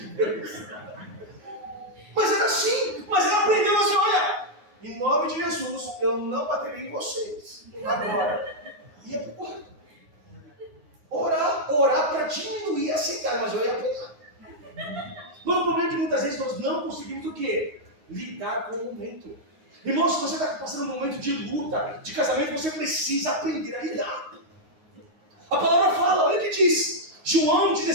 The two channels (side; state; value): left; late; 9.5 ms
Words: Deus. Mas era assim. Mas ela aprendeu assim: olha, em nome de Jesus, eu não baterei em vocês. Agora, ia para o quarto. Orar para diminuir a sentada, mas eu ia apanhar. Mas o problema é que muitas vezes nós não conseguimos o quê? Lidar com o momento. Irmão, se você está passando um momento de luta, de casamento, você precisa aprender a lidar. A palavra fala, olha o que diz. João